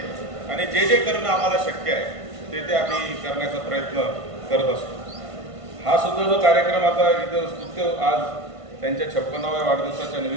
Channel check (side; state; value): left; late; 1.5 ms